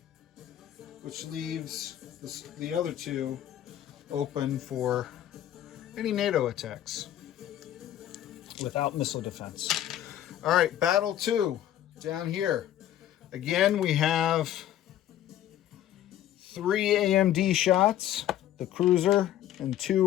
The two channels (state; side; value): quieter; right; 12.0 dB